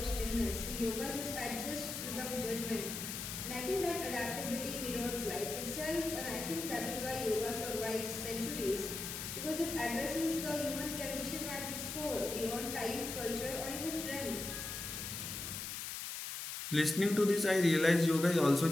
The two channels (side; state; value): left; noise; hiss, 5 dB below the sound